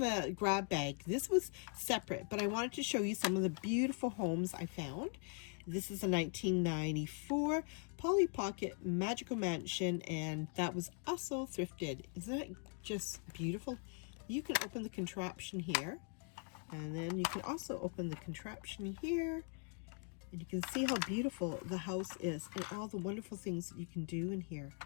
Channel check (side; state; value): right; quieter; 39.4 dB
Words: grab bag. This was separate, but I wanted to show you some of the beautiful homes I found. This is a 1994 Pollypocket Magical Mansion, and that was also thrifted. Isn't that just beautiful? You can open the contraption here, and then you can also open the contraption here, and you can see how beautiful the house is and all the wonderful things that you can do in here.